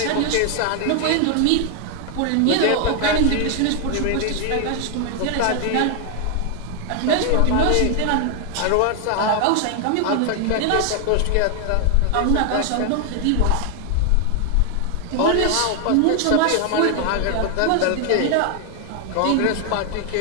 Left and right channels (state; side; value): different; both; correlation 0.00